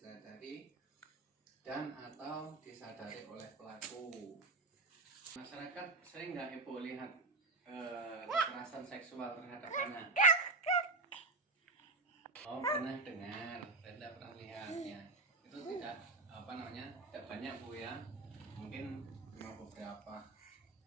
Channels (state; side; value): quieter; left; 3.4 dB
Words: dan atau disadari oleh pelaku. Masyarakat sering nggak Ibu lihat kekerasan seksual terhadap anak? Oh, pernah dengar, tidak pernah lihat ya. Itu tidak tidak banyak Bu ya. Mungkin cuma beberapa.